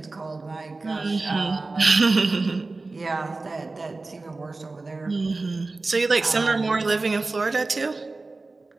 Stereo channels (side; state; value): left; quieter; 3.5 dB